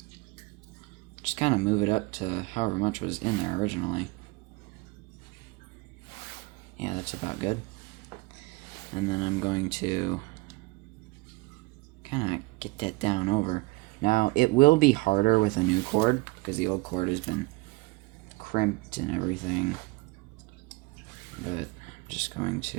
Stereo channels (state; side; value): quieter; left; 24.3 dB